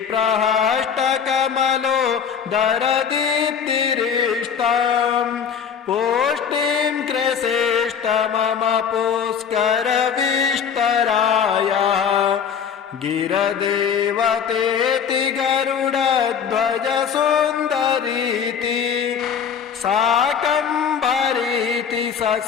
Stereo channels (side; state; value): right; quieter; 7.3 dB